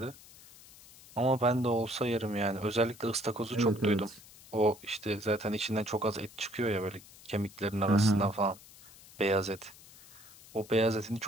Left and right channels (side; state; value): left; noise; hiss, 21 dB below the sound